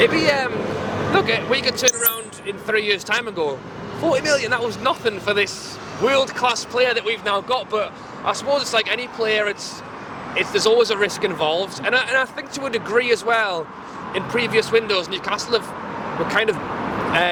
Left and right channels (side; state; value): both; identical; correlation 1.00